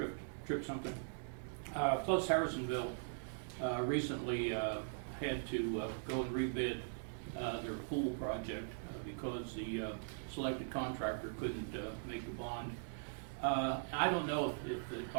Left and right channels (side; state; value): left; silent; digital silence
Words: something. Plus Harrisonville recently had to go and rebid their pool project because the selected contractor couldn't make the bond. I don't know if it